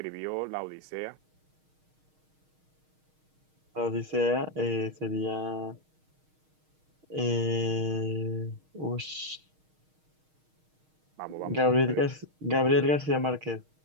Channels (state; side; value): late; left; 6.4 ms